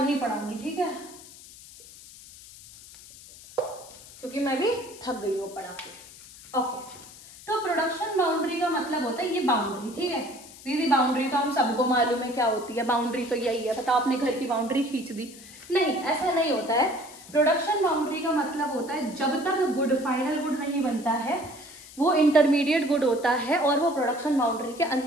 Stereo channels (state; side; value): noise; left; hiss, 19 dB below the sound